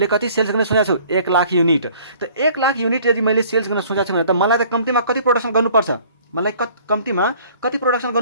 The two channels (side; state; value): both; inverted; correlation -0.54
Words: लाख युनिट। त 1 लाख युनिट यदि मैले सेल्स गर्न सोचेको छु भने त मलाई त कम्तीमा कति प्रोडक्सन गर्नुपर्छ,